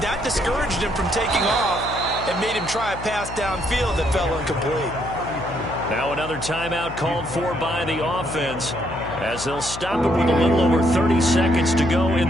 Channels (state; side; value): noise; left; hum, 11 dB below the sound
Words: that discouraged him from taking off and made him try a pass downfield that fell incomplete. Now another timeout called for by the offense as they'll stop it with a little over 30 seconds to go in